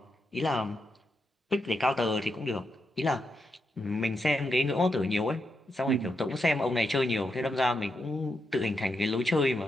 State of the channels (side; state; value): both; normal; correlation 0.84